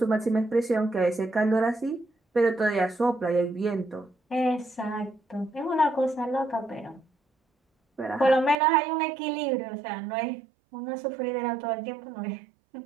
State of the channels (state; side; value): drops out; left; at 8.6 s